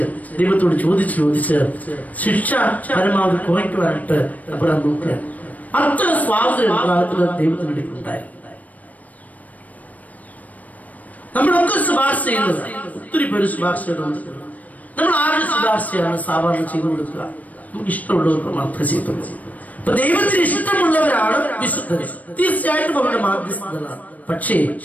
ദൈവത്തോട് ചോദിച്ച് ശിക്ഷ പരമാവധി കുറയ്ക്കുവാനായിട്ട് അബ്രഹാം നോക്കുക. അത്ര സ്വാതന്ത്ര്യം ദൈവത്തിന് ഉണ്ടായി. നമ്മളൊക്കെ ശുപാർശ ചെയ്യുന്നത്, ഒത്തിരി പേര് ശുപാർശ ചെയ്തുകൊടുക്കുക. നമ്മൾ ആരുടെ ശുപാർശയാണ് സാധാരണ ചെയ്തു കൊടുക്കുക? നമുക്ക് ഇഷ്ടമുള്ളവർക്ക് മാത്രമേ ചെയ്തുള്ളൂ. അപ്പൊ ദൈവത്തിന് ഇഷ്ടമുള്ളവരാണ് വിശുദ്ധർ. തീർച്ചയായിട്ടും അവരുടെ മാധ്യസ്ഥതകളാണ്. പക്ഷേ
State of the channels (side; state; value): right; late; 0.074 ms